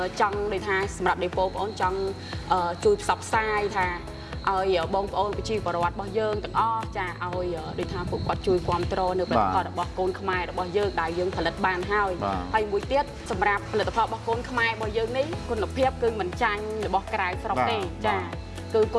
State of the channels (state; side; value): identical; both; correlation 1.00